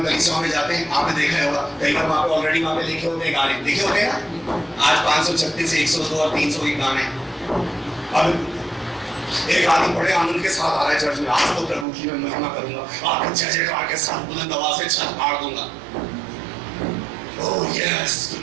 कलीसियाओं में जाते हैं, आपने देखा होगा, कई बार वहाँ पे ऑलरेडी वहाँ पे लिखे होते हैं गाने, लिखे होते हैं ना। आज 536 से 102 और 300 के गाने। अब एक आदमी बड़े आनंद के साथ आ रहा है चर्च में, आज तो प्रभु की मैं महिमा करूंगा, आपको जय जयकार के साथ बुलंद आवाज से छत फाड़ दूंगा। ओह यस,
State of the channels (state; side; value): drops out; left; at 11.9 s